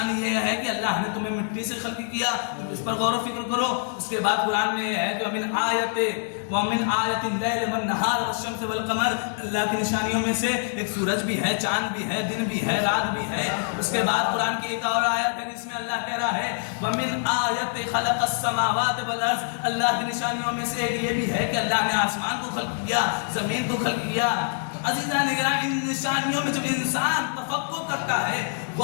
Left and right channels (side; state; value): right; silent; 61 dB below the other